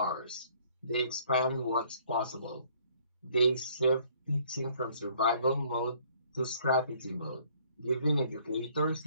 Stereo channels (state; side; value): inverted; both; correlation -0.60